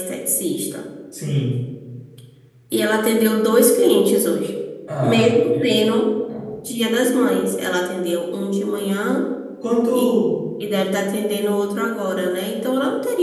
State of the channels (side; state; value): both; identical; correlation 1.00